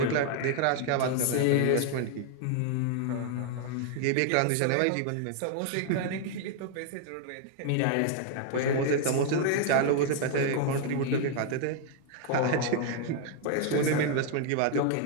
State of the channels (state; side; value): different; both; correlation 0.00